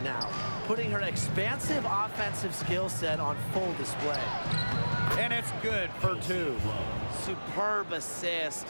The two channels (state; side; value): inverted; both; correlation -1.00